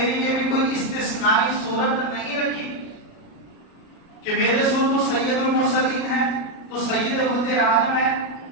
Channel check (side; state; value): right; late; 37 ms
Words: لیے بھی کوئی استثنائی صورت نہیں رکھی کہ میرے رسول تو سید المرسلین ہے، تو سید ولد آدم ہے،